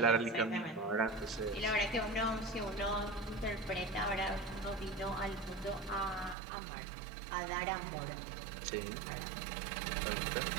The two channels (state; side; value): drops out; left; at 6.4 s